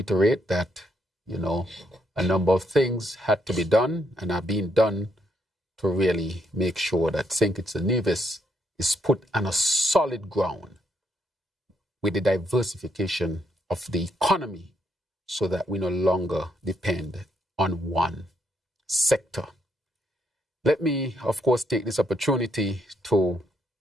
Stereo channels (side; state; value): both; normal; correlation 0.75